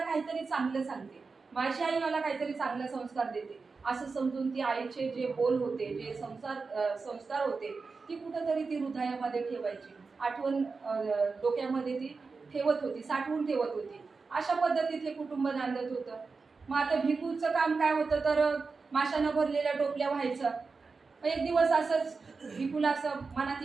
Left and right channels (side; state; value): left; quieter; 4.5 dB